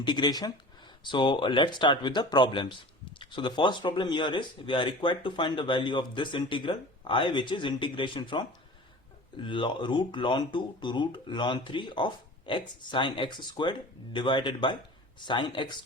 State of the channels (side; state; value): both; normal; correlation 0.38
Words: So let's start with the problems. So the first problem here is we are required to find the value of this integral I, which is integration from root ln 2 to root ln 3 of x sine x squared divided by sine x